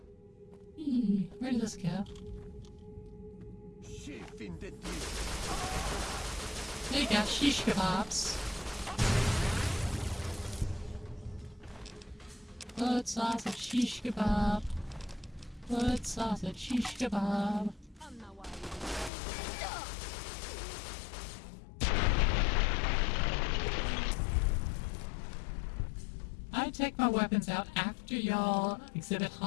Eee, where did this go? There you go, shish kebabs. Blood sausage shish kebab. Blood sausage shish kebab. I take my weapons out after y'all exhibit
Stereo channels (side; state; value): right; drops out; at 19.1 s